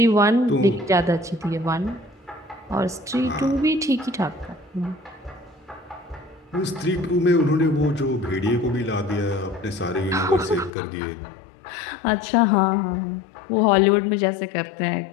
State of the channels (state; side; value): drops out; right; at 10.7 s